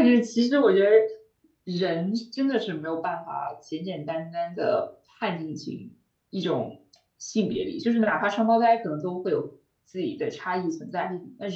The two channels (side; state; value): both; identical; correlation 1.00